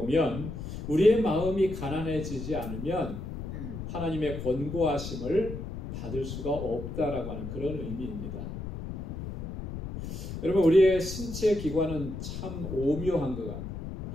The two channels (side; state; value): left; noise; rumble, 7 dB below the sound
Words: 우리의 마음이 가난해지지 않으면 하나님의 권고하심을 받을 수가 없다라고 하는 그런 의미입니다. 여러분 우리의 신체 기관은 참 오묘한 것 같아요.